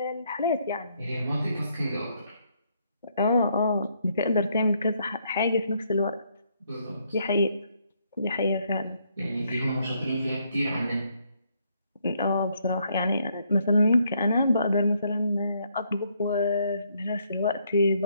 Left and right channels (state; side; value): inverted; both; correlation -0.72